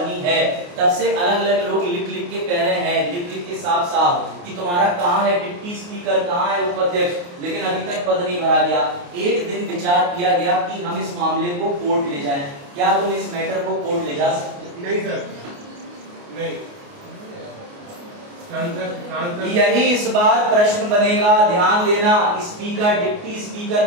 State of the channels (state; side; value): late; left; 28 ms